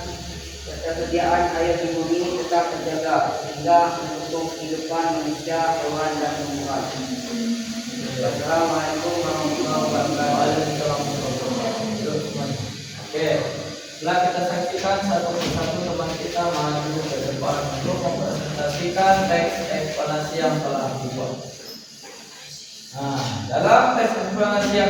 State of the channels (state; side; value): identical; both; correlation 1.00